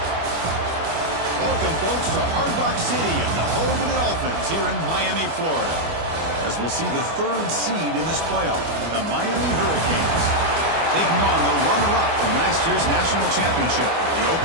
Welcome, folks, to Hard Rock City and the home of the Dolphins here in Miami, Florida, as we'll see the 3rd seed in this playoff, the Miami Hurricanes, taking on the runner-up from last year's national championship, the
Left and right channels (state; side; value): late; left; 25 ms